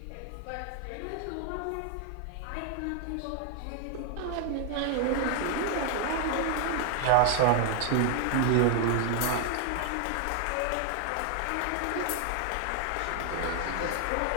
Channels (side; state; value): both; different; correlation 0.00